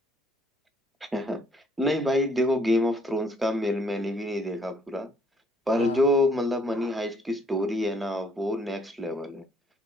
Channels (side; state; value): both; normal; correlation 0.65